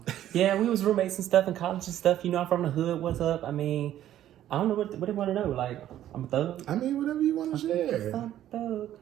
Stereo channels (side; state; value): left; quieter; 12.1 dB